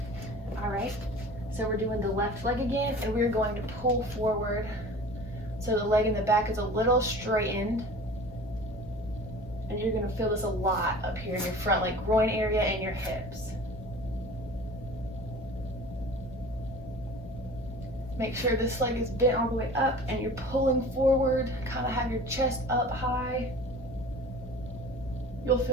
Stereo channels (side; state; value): both; normal; correlation 0.41